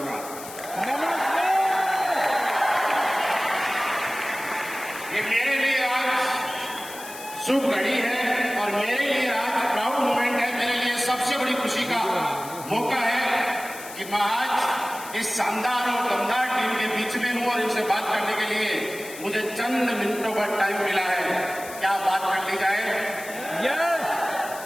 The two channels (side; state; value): left; noise; hiss, 14 dB below the sound